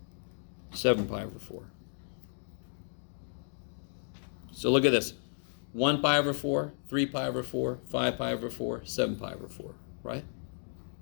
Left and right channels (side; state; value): right; silent; digital silence